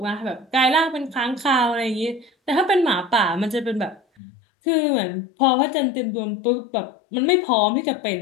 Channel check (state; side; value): drops out; right; at 4.0 s